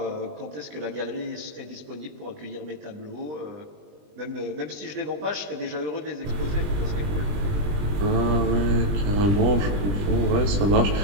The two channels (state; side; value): late; left; 20 ms